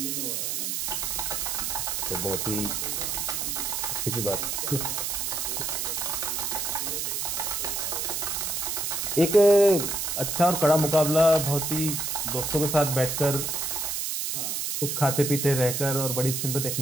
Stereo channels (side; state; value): right; noise; hiss, 1 dB below the sound